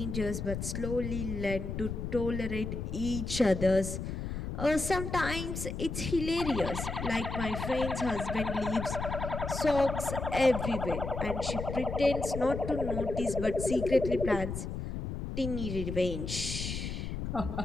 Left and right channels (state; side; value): noise; left; rumble, 5 dB below the sound